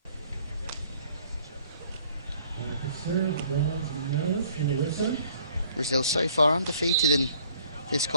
Brazil so far undefeated in this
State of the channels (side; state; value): both; inverted; correlation -0.59